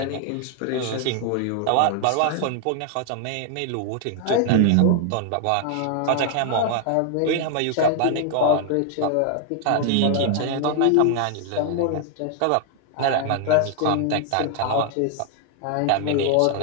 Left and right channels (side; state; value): both; different; correlation 0.00